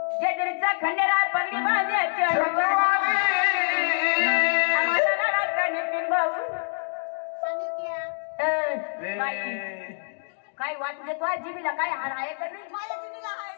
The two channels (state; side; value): silent; right; digital silence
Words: जेजुरीचा खंडेरा पगडी बांध्याच्या आम्हाला लढाचा नितीन भाऊ काय वाटू देतो जीबीला काय हार आहे तर